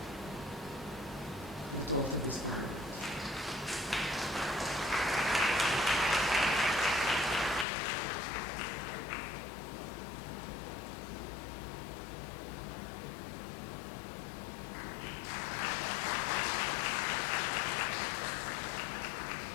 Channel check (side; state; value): right; drops out; at 7.7 s